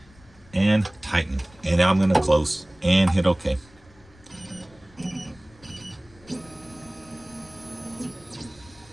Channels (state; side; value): noise; left; rumble, 26 dB below the sound